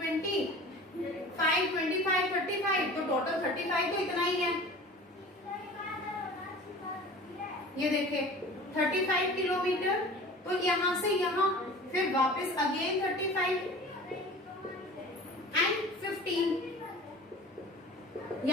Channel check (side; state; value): both; normal; correlation 0.41